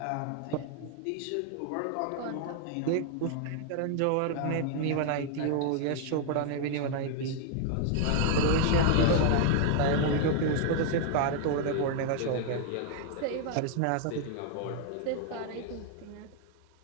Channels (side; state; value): both; different; correlation 0.00